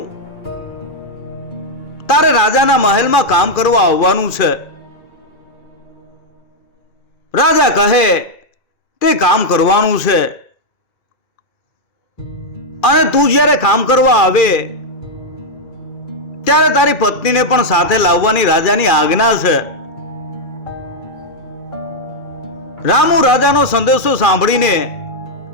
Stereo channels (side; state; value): right; late; 2.4 ms